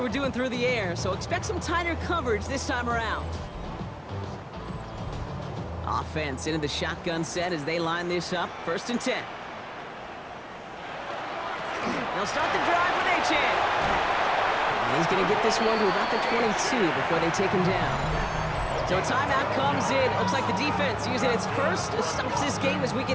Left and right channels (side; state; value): both; identical; correlation 1.00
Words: doing through the air, so expect some tighter coverage this time around. Offense into the shotgun set as they line this up, 1st and 10. They'll start the drive with Achan. And he's going to get this one to about the 22 before they take him down. So a timeout comes in. Looks like the defense using its first stops this game as we